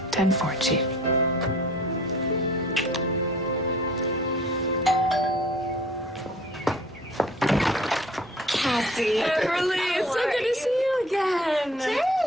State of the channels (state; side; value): normal; both; correlation 0.50